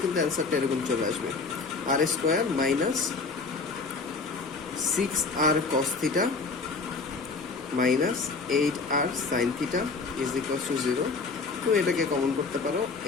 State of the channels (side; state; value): right; quieter; 4.3 dB